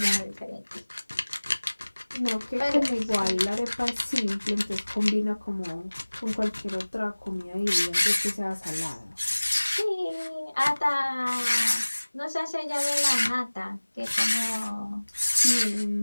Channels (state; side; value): inverted; both; correlation -1.00